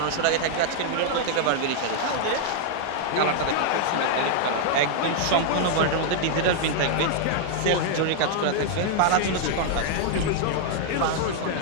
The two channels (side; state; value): both; different; correlation 0.00